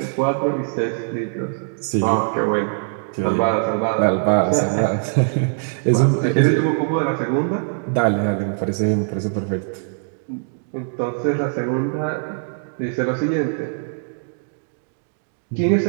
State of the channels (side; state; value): left; silent; digital silence